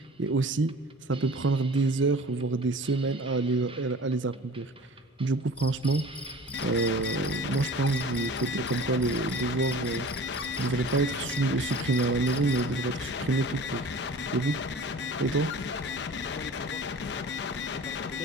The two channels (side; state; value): both; normal; correlation 0.42